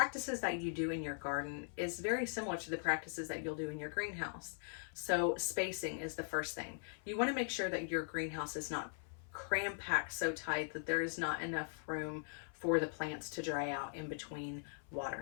that you do in your garden is very similar to the practices that you'll do in your greenhouse. So spacing is the first thing. You want to make sure that your greenhouse is not cram-packed so tight that there is not enough room for the plants to dry out in between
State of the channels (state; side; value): silent; right; 51 dB below the other